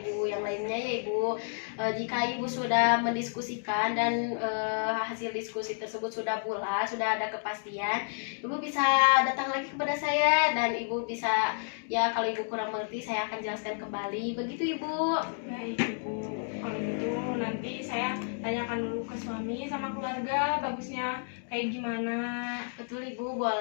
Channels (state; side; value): silent; right; digital silence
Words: Ibu yang lainnya ya Ibu. Jika Ibu sudah mendiskusikan dan hasil diskusi tersebut sudah bulat, sudah ada kepastian, Ibu bisa datang lagi kepada saya dan Ibu bisa, ya kalau Ibu kurang mengerti saya akan jelaskan kembali. Begitu Ibu. Baik Ibu, kalau gitu nanti saya tanyakan dulu ke suami sama keluarga bagusnya kayak gimana. Betul Ibu,